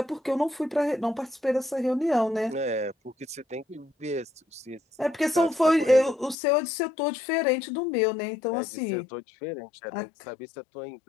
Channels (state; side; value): drops out; right; at 6.4 s